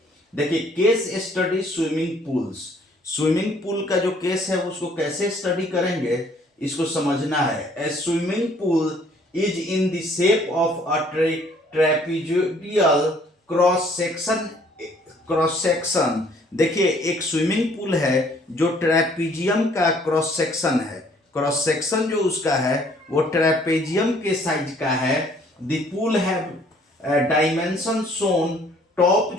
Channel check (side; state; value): both; normal; correlation 0.60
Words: देखिए, case study swimming pools. Swimming pool का जो केस है उसको कैसे स्टडी करेंगे इसको समझना है। A swimming pool is in the shape of a trapezoidal cross section. देखिए, एक स्विमिंग पूल है जो ट्रेपीजियम का क्रॉस सेक्शन है। क्रॉस सेक्शन जो उसका है वो ट्रेपेजियम के साइज का है। द पूल है डायमेंशन शोन। टॉप